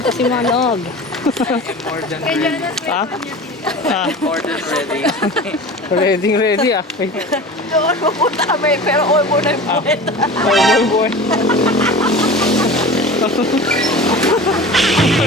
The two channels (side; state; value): both; normal; correlation 0.36